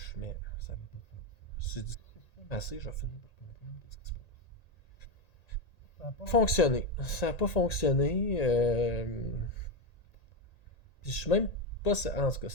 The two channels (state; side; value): late; right; 1.8 ms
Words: Ça va pas faire. Si je fume assez, je vais finir par comprendre ce qui se passe. Ça n'a pas fonctionné. Ça n'a pas fonctionné. Puis je suis même pas. En tout cas,